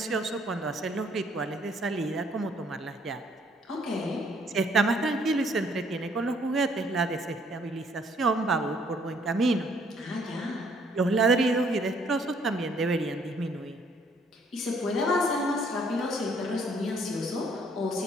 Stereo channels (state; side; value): normal; both; correlation 0.64